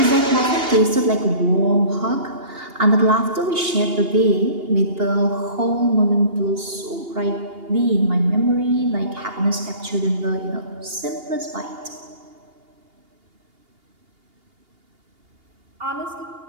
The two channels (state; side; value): late; left; 2.8 ms